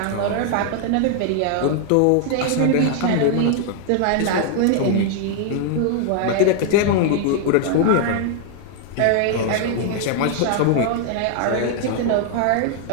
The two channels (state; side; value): different; both; correlation 0.00